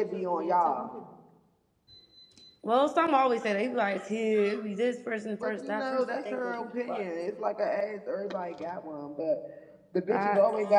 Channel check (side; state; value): both; identical; correlation 1.00